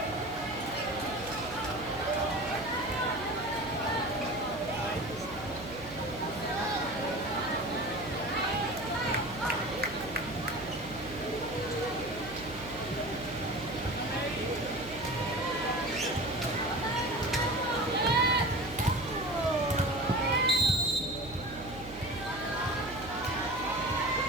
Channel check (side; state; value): right; noise; hum, 16 dB below the sound